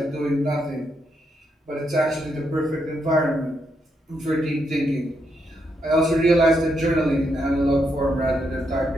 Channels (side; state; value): both; normal; correlation 0.79